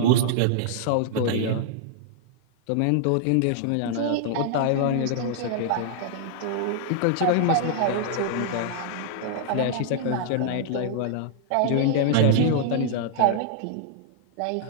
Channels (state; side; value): different; both; correlation -0.01